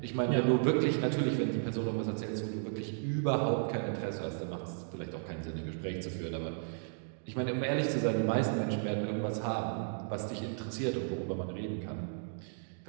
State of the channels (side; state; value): left; silent; digital silence